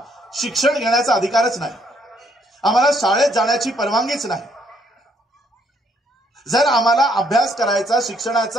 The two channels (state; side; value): normal; both; correlation 0.69